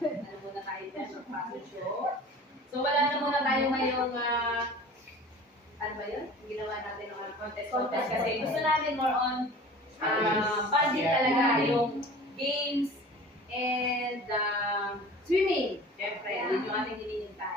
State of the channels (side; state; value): both; normal; correlation 0.41